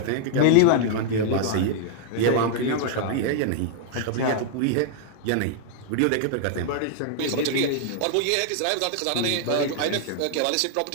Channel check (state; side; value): different; both; correlation 0.00